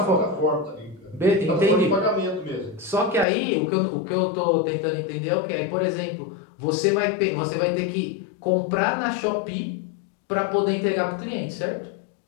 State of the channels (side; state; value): right; drops out; at 3.2 s